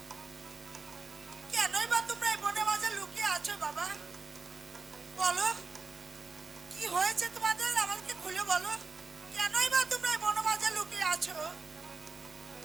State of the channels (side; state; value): left; quieter; 4.3 dB